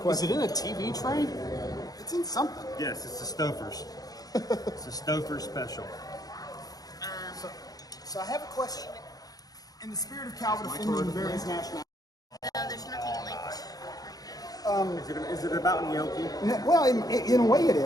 Is it in a TV tray? It's in something. Yes, it's the Stofers. It's a Stouffer special. So I have a question. In the spirit of Calvin offending various nationalities. No, there's nothing linked. Is it about gnocchi? Well, in a way it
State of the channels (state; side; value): late; right; 0.18 ms